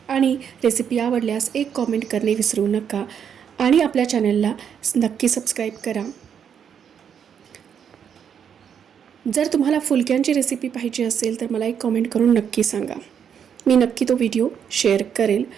आणि रेसिपी आवडल्यास एक कॉमेंट करणे विसरू नका आणि आपल्या चॅनलला नक्की सबस्क्राईब करा. जर तुम्हाला फुलक्यांची रेसिपी पाहिजे असेल तर मला एक कॉमेंट करून नक्की सांगा. मी नक्की तो व्हिडिओ शेअर करेल.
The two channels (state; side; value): quieter; left; 8.0 dB